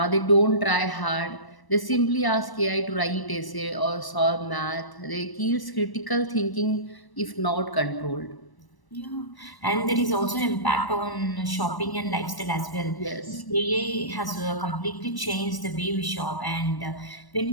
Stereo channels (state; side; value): late; right; 1.0 ms